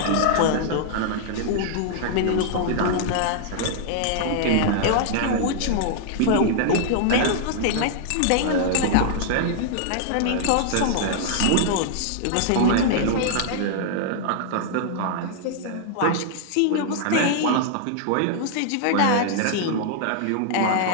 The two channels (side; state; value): both; different; correlation -0.01